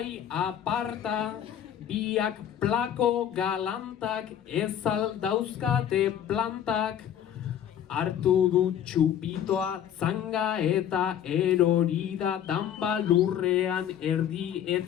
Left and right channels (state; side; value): quieter; right; 9.9 dB